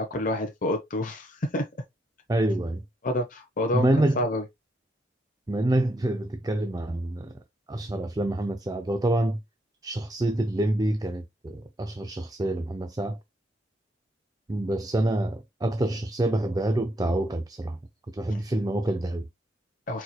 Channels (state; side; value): normal; both; correlation 0.76